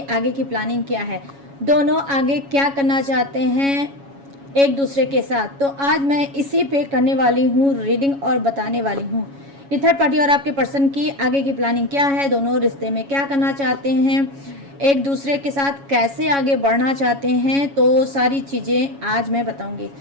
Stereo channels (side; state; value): left; late; 7.2 ms